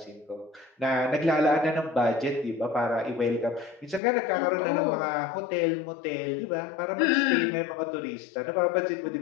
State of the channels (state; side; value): drops out; right; at 4.0 s